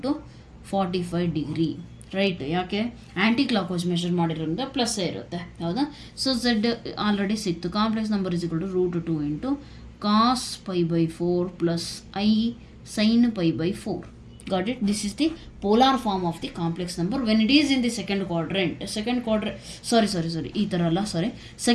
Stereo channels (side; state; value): both; identical; correlation 1.00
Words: to 45 degree. Right. ಯಾಕೆ? ಆ್ಯಂಟಿ ಕ್ಲಾಕ್ ವೈಸ್ ಮೆಷರ್ ಮಾಡಿರೋದ್ರಿಂದ ಪ್ಲಸ್ಸೇ ಇರುತ್ತೆ, ಹೌದಾ? ಸೊ ಝೆಡ್ ಆಲ್ರೆಡಿ ಸಿಕ್ತು. Complex number is equal to √2 into cos π/4 plus I sin π/4. Got it? This is the polar form of the complex number when it is in the second quadrant. ಈ ಥರ ಅಲ್ಲ,